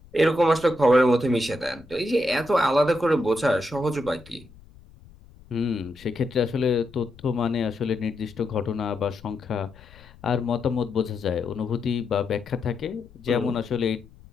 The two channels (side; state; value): left; noise; rumble, 23 dB below the sound